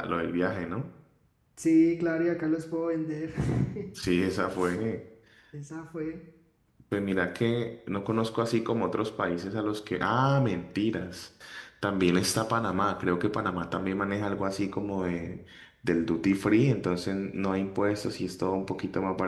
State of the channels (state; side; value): identical; both; correlation 1.00